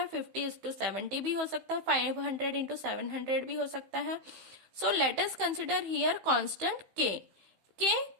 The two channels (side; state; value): left; late; 16 ms